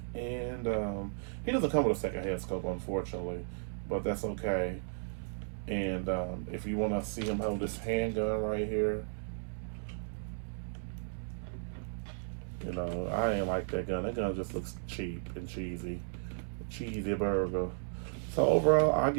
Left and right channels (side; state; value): left; silent; 55 dB below the other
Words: he doesn't come with a second head scope, unfortunately, but that's okay. And if you want to see him hold this handgun right here, I ain't like that gun. That gun just looks cheap and cheesy. Cheesy burger. So overall, I